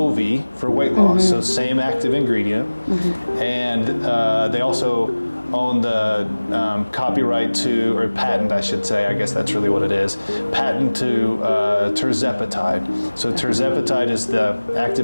for weight loss, so same active ingredient. And they also own the copyright to, or patent I should say, I guess that's really what it is, patent to tirzepatide. So tirzepatide is the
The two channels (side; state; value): both; inverted; correlation -1.00